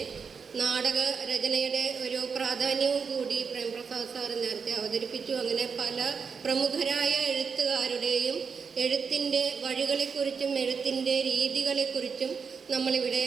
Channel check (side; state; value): left; quieter; 5.8 dB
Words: നാടക രചനയുടെ ഒരു പ്രാധാന്യവും കൂടി പ്രേംപ്രസാദ് സാറ് നേരത്തെ അവതരിപ്പിച്ചു. അങ്ങനെ പല പ്രമുഖരായ എഴുത്തുകാരുടെയും എഴുത്തിൻ്റെ വഴികളെക്കുറിച്ചും എഴുത്തിൻ്റെ രീതികളെക്കുറിച്ചും നമ്മളിവിടെ